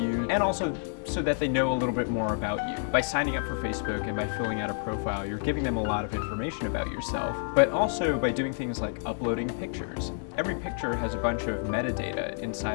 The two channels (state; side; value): silent; right; digital silence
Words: and also so that they know a little bit more about you. By signing up for Facebook and by filling out a profile, you're giving them a lot of information about yourself, but also by doing things like uploading pictures. Every picture has a bunch of metadata